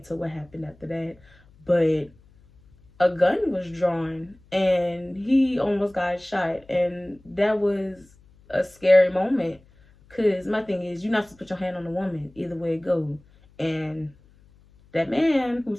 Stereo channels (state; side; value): noise; left; hum, 28 dB below the sound